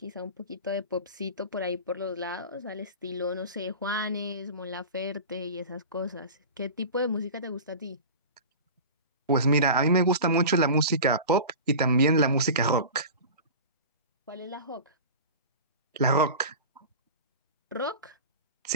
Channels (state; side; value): inverted; both; correlation -0.33